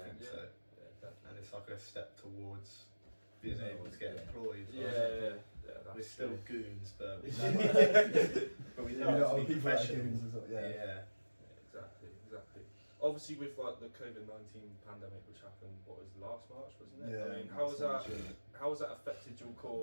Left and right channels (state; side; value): inverted; both; correlation -1.00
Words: think Yeah. so. Yeah, definitely. And it's like a step towards being able to get Yeah. employed. Yeah, that's We're still true. goons, but we Yeah. but we You know know, how to other be people that are professional. giving as well, yeah. Yeah. Exactly. Obviously, with like the COVID-19 pandemic, which happened, what was it, last March, wasn't it? Yeah, I mean, how has that yeah. affected your